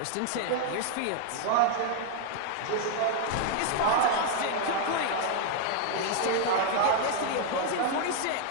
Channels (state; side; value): different; both; correlation 0.00